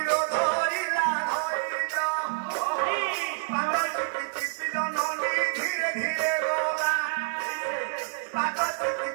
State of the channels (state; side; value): silent; left; 60 dB below the other